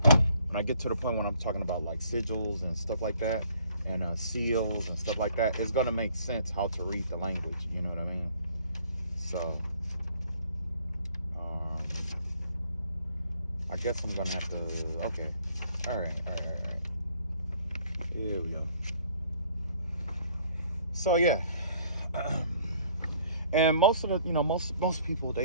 I get to the point when I'm talking about like sigils and stuff like that, and seals and stuff like that, it's gonna make sense how to read the language. You know what I mean? So I guess I'm gonna have to. Okay. All right. Here we go. So yeah. And most of the, most people,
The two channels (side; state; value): both; inverted; correlation -0.60